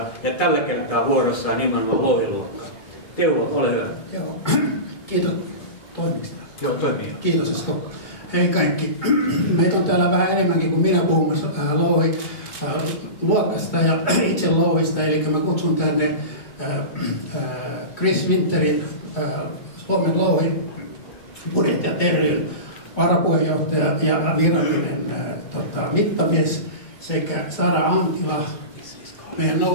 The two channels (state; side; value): late; right; 2.2 ms